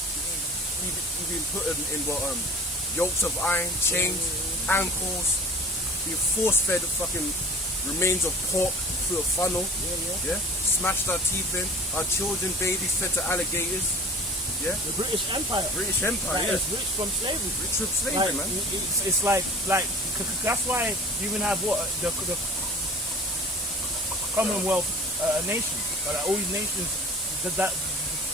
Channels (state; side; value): normal; both; correlation 0.42